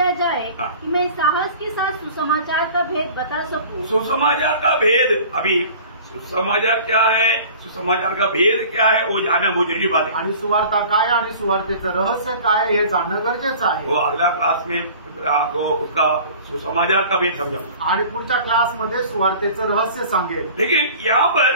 जाए कि मैं साहस के साथ सुसमाचार का भेद बता सकूं। सुसमाचार का भेद, अभी सुसमाचार क्या है, सुसमाचार का भेद क्या है वो जानना बहुत जरूरी बात है। आणि सुवार्ता काय आणि सुवार्तेचं रहस्य काय हे जाणणं गरजेचं आहे। वो अगला क्लास में आपको उसका सुसमाचार का भेद समझाऊंगा आणि पुढच्या क्लासमध्ये सुवार्तेचं रहस्य सांगेल। लेकिन यहाँ पर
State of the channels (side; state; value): both; inverted; correlation -0.44